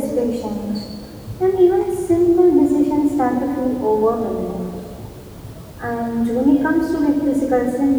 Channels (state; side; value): identical; both; correlation 1.00